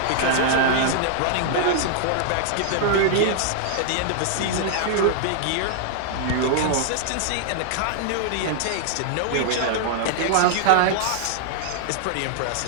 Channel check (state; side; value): different; both; correlation -0.01